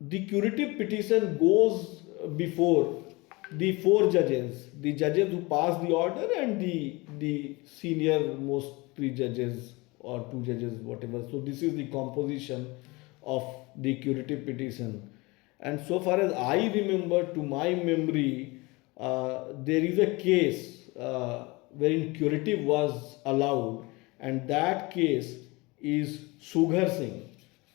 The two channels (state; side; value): quieter; right; 24.3 dB